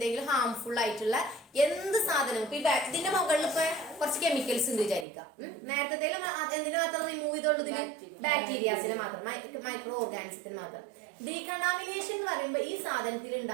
ഹാംഫുൾ ആയിട്ടുള്ള എന്ത് സാധനം. ഇപ്പൊ ഇതിന്റെ മുകളിൽ ഇപ്പൊ കുറച്ച് കെമിക്കൽസ് ഉണ്ട് വിചാരിക്കാം. നേരത്തെ എന്തിനു മാത്രം റിമൂവ് ചെയ്തോളൂ? ഇതിന് ബാക്ടീരിയാസിനെ മാത്രം, മൈക്രോ ഓർഗാനിസത്തിന് മാത്രം. ഡീകണ്ടാമിനേഷൻ എന്ന് പറയുമ്പോൾ ഈ സാധനത്തിൽ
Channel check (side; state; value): left; drops out; at 5.1 s